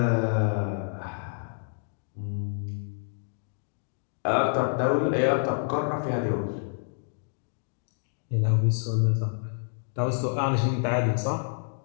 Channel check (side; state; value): right; silent; digital silence